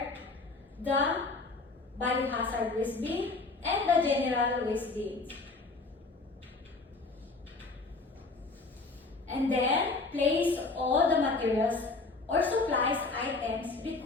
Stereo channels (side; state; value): right; quieter; 3.6 dB